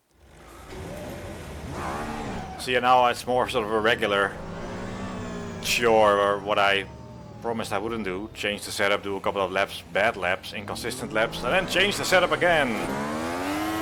See, now it's more sort of a regular chore, or what I promised I wouldn't do. Change the setup, do a couple of laps, bad laps, inconsistent laps, and then change the setup again.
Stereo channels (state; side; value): identical; both; correlation 1.00